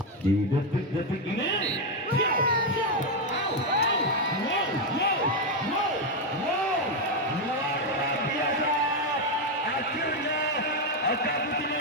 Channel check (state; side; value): normal; both; correlation 0.05